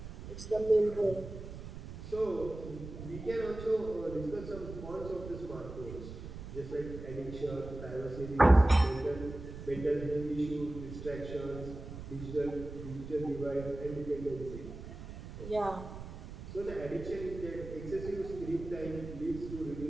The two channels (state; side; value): noise; right; rumble, 11 dB below the sound